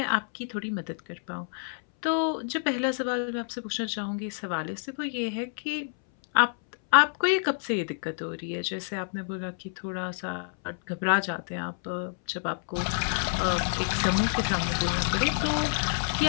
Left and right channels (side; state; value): right; silent; 59 dB below the other